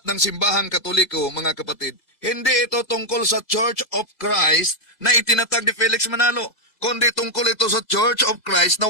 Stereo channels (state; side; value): late; right; 2.0 ms